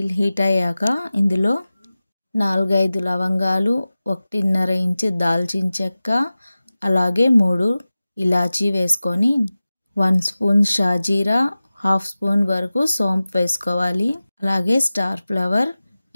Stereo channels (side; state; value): both; inverted; correlation -0.96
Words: హీట్ అయ్యాక ఇందులో 4-5 లవంగాలు, 1.5 ఇంచు దాల్చిన చెక్క, అలాగే 3 ఇలాచీ వేసుకొని 1 స్పూన్ షాజీరా, 1/2 స్పూన్ వరకు సోంపు వేసుకోవాలి. అలాగే స్టార్ ఫ్లవర్,